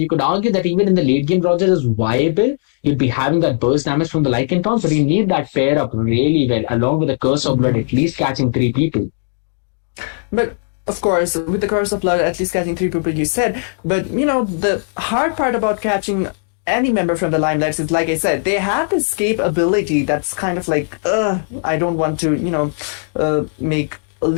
could argue that even in the late game, Roger is viable. You'd be having that burst damage from the Lycan Taunt, but you need that pair up really well, along with the Curse of Blood, at least catching 3 people. But of course, with the Curse of Blood, at least catching 3 people, you said. But, the hard part about catching any member from the Limelights is, like I said, they have the escape ability that's kind of like, I don't want to, make a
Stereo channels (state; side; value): silent; right; 68 dB below the other